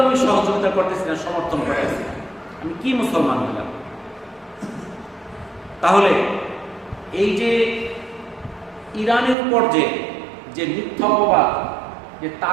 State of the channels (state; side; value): drops out; left; at 9.3 s